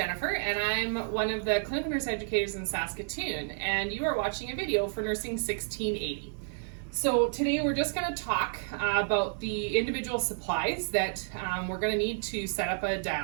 and I'm one of the clinical nurse educators in Saskatoon, and you are watching a video for Nursing 1680. So today we're just going to talk about the individual supplies that we're going to need to set up a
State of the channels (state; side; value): silent; left; digital silence